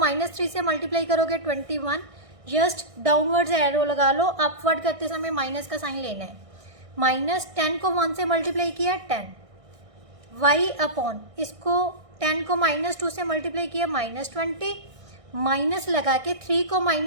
से मल्टीप्लाई करोगे 21, जस्ट डाउनवर्ड्स एरो लगा लो, अपवर्ड करते समय माइनस का साइन लेना है। -10 को 1 से मल्टीप्लाई किया 10, y अपॉन इसको 10 को -2 से मल्टीप्लाई किया -20, माइनस लगा के 3 को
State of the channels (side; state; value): left; late; 1.6 ms